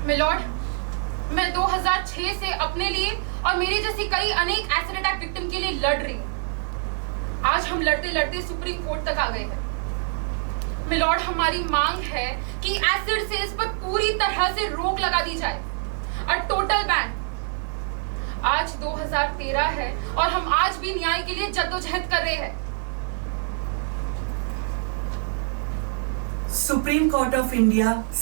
Milord, मैं 2006 से अपने लिए और मेरी जैसी कई अनेक एसिड अटैक विक्टिम के लिए लड़ रही हूँ। आज हम लड़ते लड़ते सुप्रीम कोर्ट तक आ गए हैं। मिलॉर्ड, हमारी मांग है कि एसिड सेल्स पर पूरी तरह से रोक लगा दी जाए, और टोटल बैन। आज 2013 है और हम आज भी न्याय के लिए जद्दोजहद कर रहे हैं। सुप्रीम कोर्ट ऑफ इंडिया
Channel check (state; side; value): silent; left; 61 dB below the other